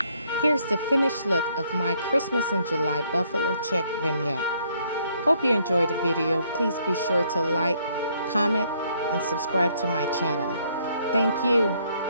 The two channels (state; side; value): inverted; both; correlation -0.68